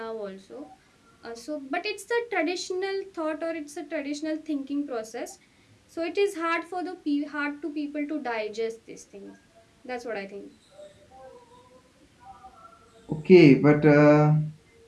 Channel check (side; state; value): both; identical; correlation 1.00